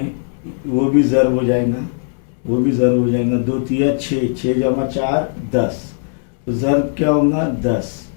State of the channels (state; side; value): silent; right; digital silence